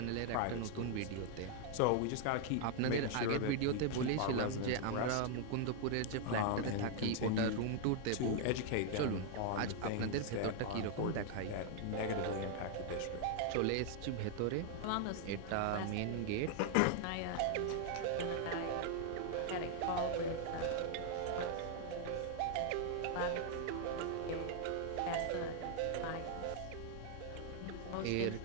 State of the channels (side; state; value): both; different; correlation 0.00